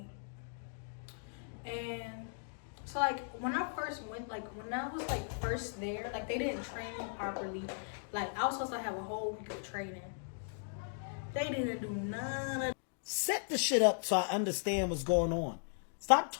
And so like when I first went, like when I was like first there, like they didn't train me properly. Like I was supposed to have a whole week of training. They didn't do none of. Set the shit up so I understand what's going on. Stop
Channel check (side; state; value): right; silent; digital silence